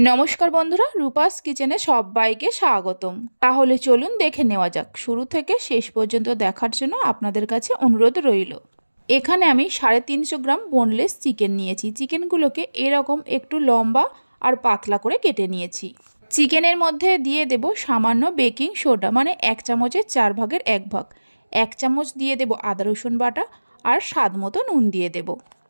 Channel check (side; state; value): both; inverted; correlation -1.00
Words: বন্ধুরা, রূপাস কিচেনে সবাইকে স্বাগতম। তাহলে চলুন দেখে নেওয়া যাক। শুরু থেকে শেষ পর্যন্ত দেখার জন্য আপনাদের কাছে অনুরোধ রইল। এখানে আমি 350 গ্রাম বোনলেস চিকেন নিয়েছি। চিকেনগুলোকে এরকম একটু লম্বা আর পাতলা করে কেটে নিয়েছি। চিকেনের মধ্যে দিয়ে দেব সামান্য বেকিং সোডা, মানে 1 চামচের 4 ভাগের 1 ভাগ। 1 চামচ দিয়ে দেব আদা রসুন বাটা আর স্বাদ মতো নুন দিয়ে দেব।